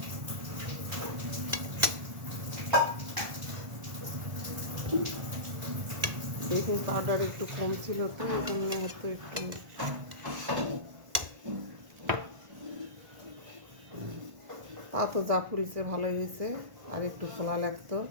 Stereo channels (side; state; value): left; late; 1.4 ms